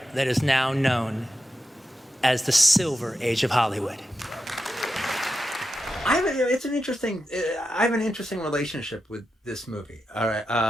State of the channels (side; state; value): both; normal; correlation 0.89